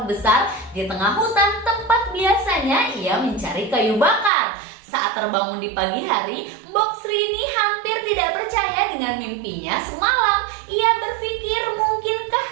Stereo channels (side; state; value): left; drops out; at 4.3 s